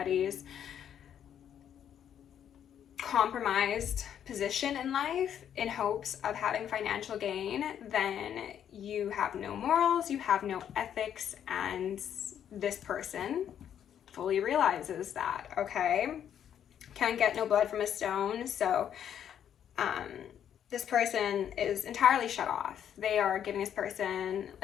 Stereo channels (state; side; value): quieter; right; 9.4 dB